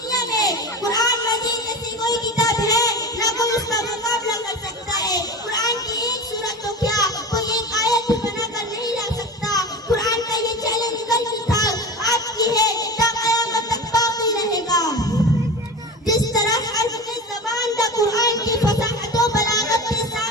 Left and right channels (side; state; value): both; normal; correlation 0.30